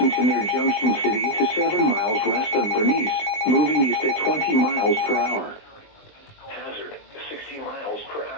to near Junction City to 7 miles west of Bernice, moving east at 20 miles per hour. Hazard, 60 miles per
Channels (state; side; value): late; right; 20 ms